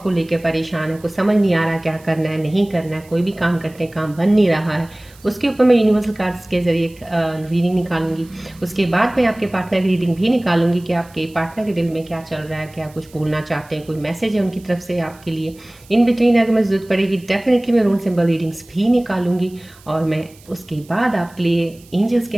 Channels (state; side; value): noise; right; hiss, 26 dB below the sound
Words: को लेकर परेशान है, कुछ समझ नहीं आ रहा क्या करना है नहीं करना है, कोई भी काम करते हैं काम बन नहीं रहा है, उसके ऊपर मैं यूनिवर्सल कार्ड्स के जरिए रीडिंग निकालूंगी। उसके बाद मैं आपके पार्टनर की रीडिंग भी निकालूंगी कि आपके पार्टनर के दिल में क्या चल रहा है, क्या कुछ बोलना चाहते हैं, कोई मैसेज है उनकी तरफ से आपके लिए। इन बिटवीन अगर मैं जरूरत पड़ेगी डेफिनेटली मैं रूल सिंबल रीडिंग्स भी निकालूंगी। और मैं उसके बाद आपके लिए एंजल्स के